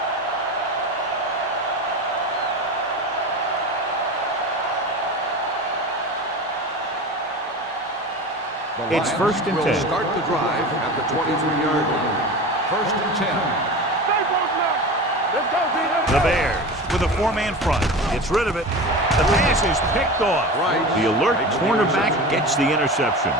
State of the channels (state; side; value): normal; both; correlation 0.30